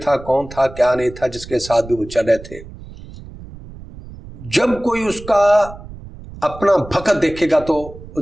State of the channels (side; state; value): right; noise; rumble, 16 dB below the sound